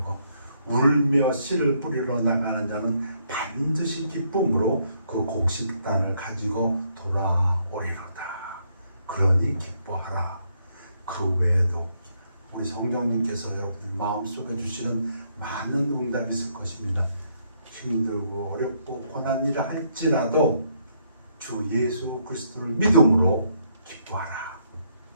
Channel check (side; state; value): both; inverted; correlation -0.73